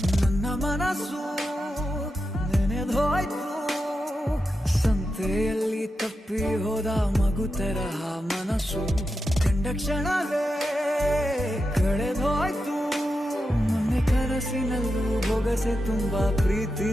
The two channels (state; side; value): normal; both; correlation 0.89